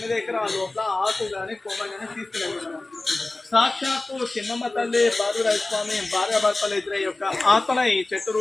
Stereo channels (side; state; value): right; quieter; 3.0 dB